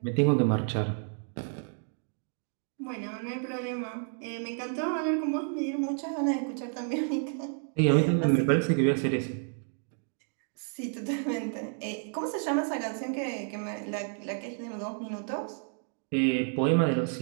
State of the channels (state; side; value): silent; left; 57 dB below the other